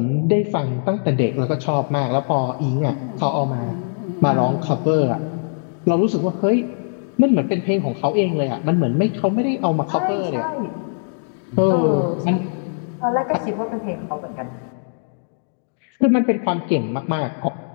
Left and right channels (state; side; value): silent; right; digital silence